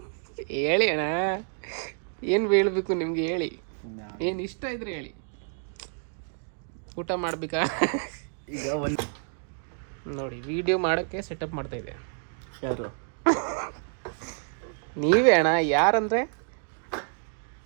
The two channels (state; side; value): silent; left; 57 dB below the other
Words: ಹೇಳಿ ಅಣ್ಣ, ಏನು ಹೇಳ್ಬೇಕು ನಿಮ್ಗೆ? ಹೇಳಿ, ಏನು ಇಷ್ಟ ಇದ್ರೆ ಹೇಳಿ. ಊಟ ಮಾಡ್ಬೇಕಾ? ಈಗ ಒಂದು ನೋಡಿ, ವಿಡಿಯೋ ಮಾಡೋಕ್ಕೆ ಸೆಟಪ್ ಮಾಡ್ತಾ ಇದೆ. ಯಾರು? ನೀವೇ ಅಣ್ಣ. ಯಾರಂದರೆ